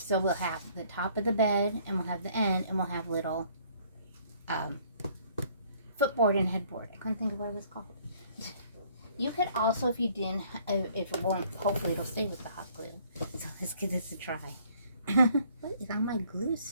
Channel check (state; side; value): inverted; both; correlation -0.60